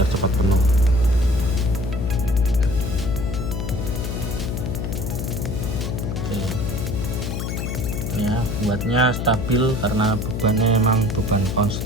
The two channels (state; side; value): noise; left; hum, 3 dB below the sound